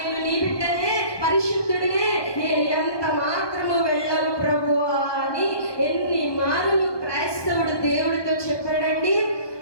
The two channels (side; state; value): right; late; 1.2 ms